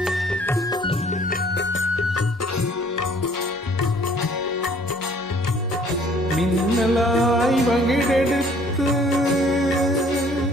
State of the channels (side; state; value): both; normal; correlation 0.57